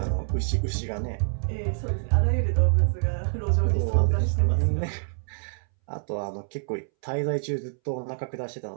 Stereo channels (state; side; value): silent; left; 61 dB below the other